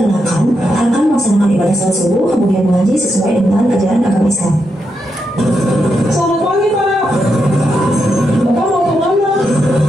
akan melaksanakan ibadah salat subuh kemudian mengaji sesuai dengan ajaran agama Islam. Selamat pagi, Pak. Bapak mau kemana?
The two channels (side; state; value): both; normal; correlation 0.83